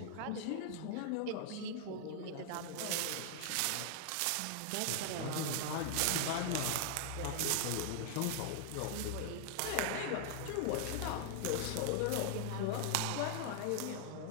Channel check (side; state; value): both; different; correlation 0.00